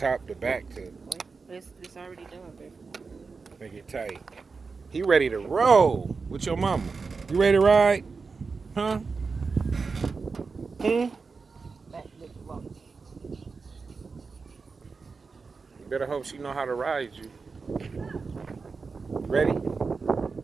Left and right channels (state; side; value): quieter; left; 4.7 dB